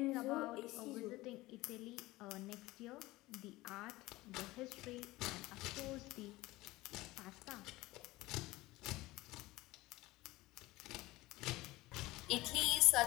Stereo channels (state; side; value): quieter; right; 19.2 dB